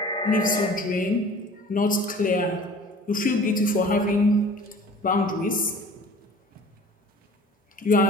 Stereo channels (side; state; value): both; normal; correlation 0.46